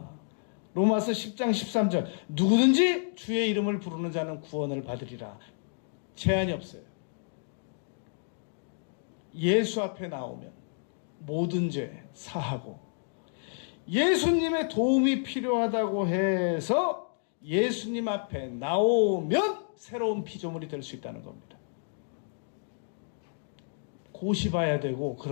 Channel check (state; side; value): silent; right; digital silence